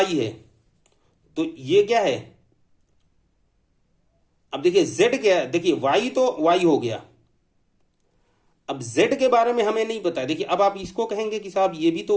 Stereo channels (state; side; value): identical; both; correlation 1.00